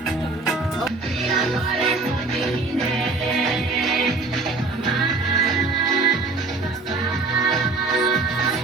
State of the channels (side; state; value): left; quieter; 3.7 dB